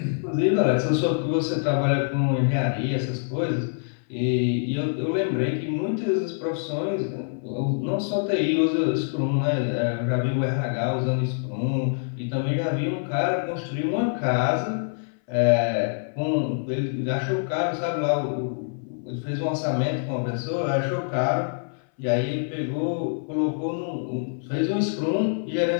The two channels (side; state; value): right; silent; 60 dB below the other